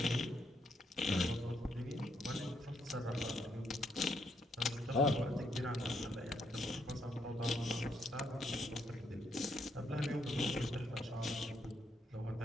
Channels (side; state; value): both; normal; correlation 0.75